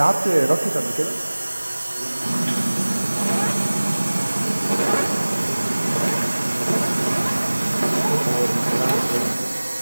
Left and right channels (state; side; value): inverted; both; correlation -1.00